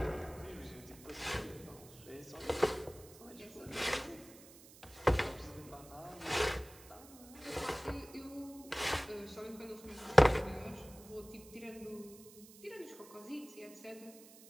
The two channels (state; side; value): noise; right; hiss, 20 dB below the sound